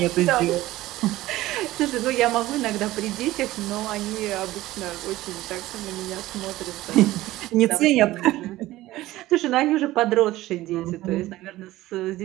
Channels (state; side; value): quieter; left; 16.7 dB